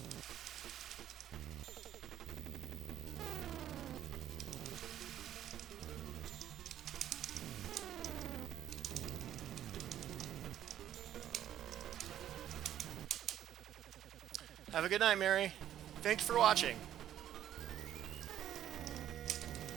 Have a good night, Mary. Thanks for watching.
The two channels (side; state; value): left; quieter; 11.3 dB